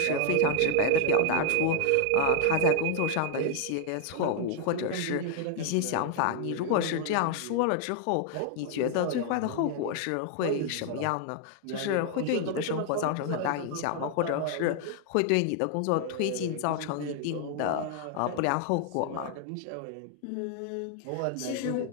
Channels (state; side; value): different; both; correlation 0.00